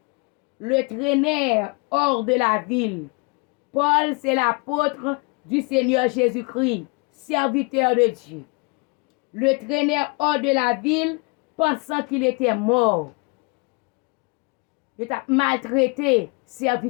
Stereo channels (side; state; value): right; quieter; 31.4 dB